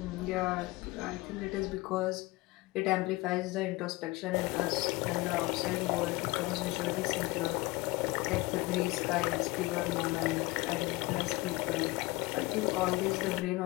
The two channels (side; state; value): right; quieter; 21.8 dB